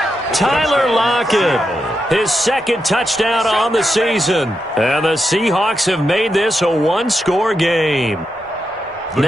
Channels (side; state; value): both; normal; correlation 0.85